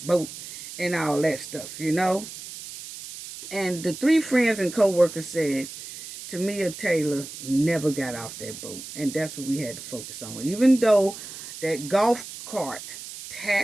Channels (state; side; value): noise; right; hiss, 12 dB below the sound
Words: boat and all that stuff, And the three friends and co-workers said Tamia Taylor never got off that boat. And that's what we had to focus on. Even though that golf cart